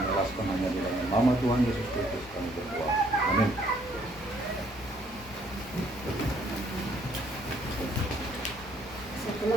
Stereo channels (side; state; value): both; normal; correlation 0.65